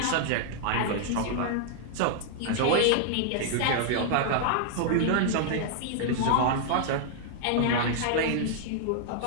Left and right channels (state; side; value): different; both; correlation -0.01